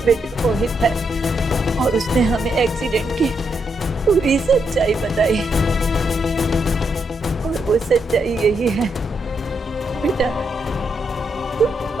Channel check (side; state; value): both; normal; correlation 0.80